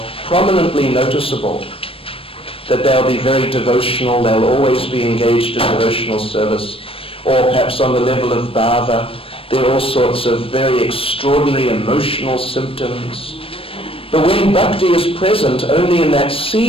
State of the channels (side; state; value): right; late; 0.27 ms